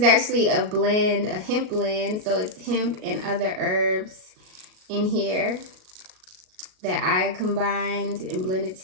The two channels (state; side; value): late; left; 38 ms